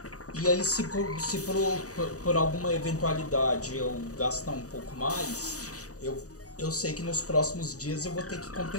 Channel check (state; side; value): late; right; 0.66 ms